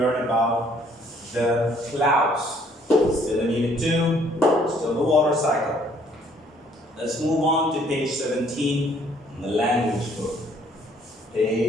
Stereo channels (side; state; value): both; normal; correlation 0.62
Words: about the clouds. Still in unit 2, still the water cycle. Let's move on to page 17 in the language book.